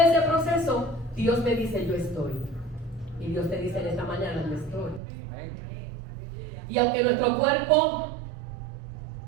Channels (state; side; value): drops out; left; at 5.0 s